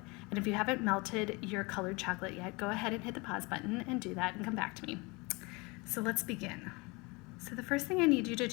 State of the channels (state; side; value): quieter; right; 26.8 dB